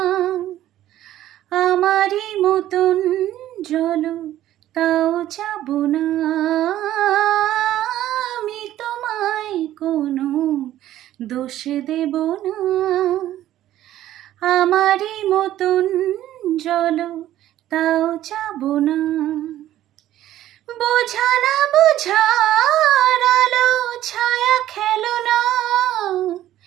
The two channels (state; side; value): quieter; left; 13.2 dB